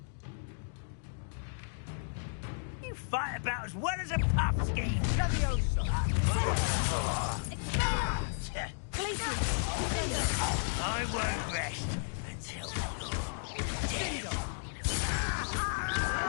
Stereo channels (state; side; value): silent; right; digital silence